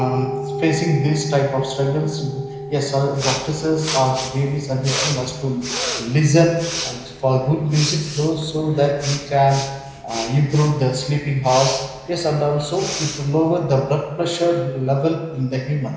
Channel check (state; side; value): identical; both; correlation 1.00